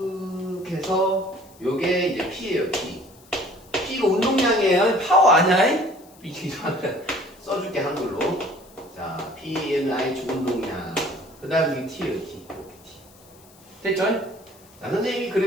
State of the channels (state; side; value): noise; left; hiss, 26 dB below the sound